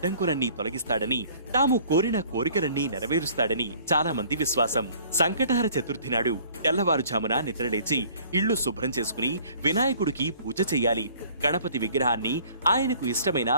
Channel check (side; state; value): both; inverted; correlation -0.54